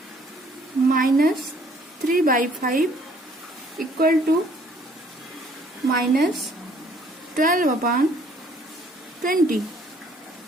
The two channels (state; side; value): normal; both; correlation 0.60